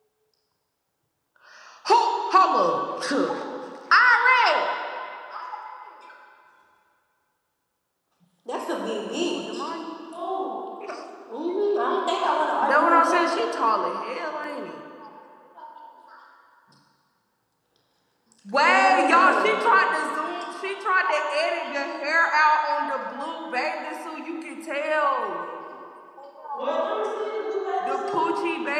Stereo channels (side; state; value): both; identical; correlation 1.00